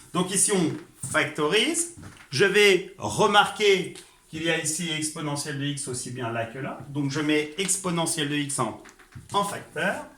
Donc ici, on factorise. Je vais remarquer qu'il y a ici exponentielle de x aussi bien là que là. Donc, je mets exponentielle de x en facteur.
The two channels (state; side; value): identical; both; correlation 1.00